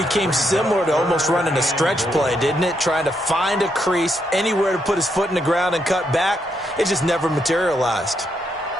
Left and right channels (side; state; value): both; normal; correlation 0.78